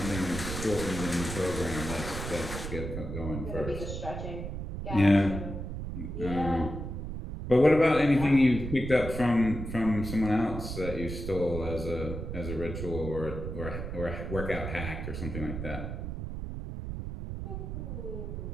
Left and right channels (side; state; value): right; noise; rumble, 6 dB below the sound